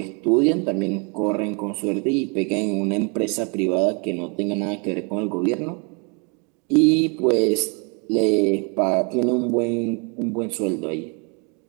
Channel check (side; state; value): left; quieter; 34.3 dB